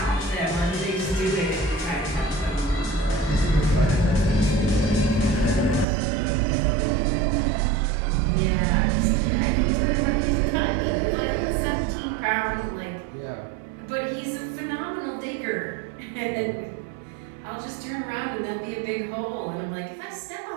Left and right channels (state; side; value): drops out; left; at 5.9 s